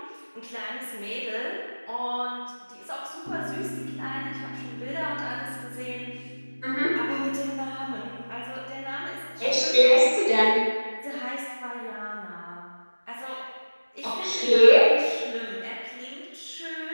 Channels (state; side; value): inverted; both; correlation -1.00